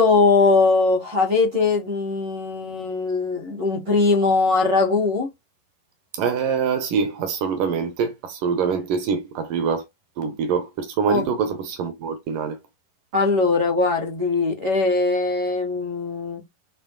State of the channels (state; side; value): late; left; 11 ms